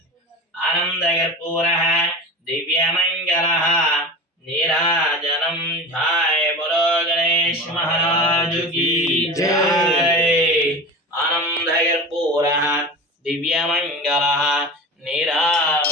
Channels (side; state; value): both; normal; correlation 0.31